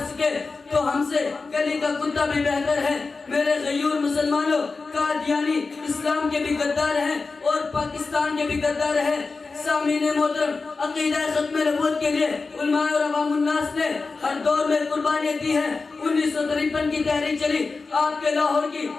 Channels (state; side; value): quieter; right; 4.1 dB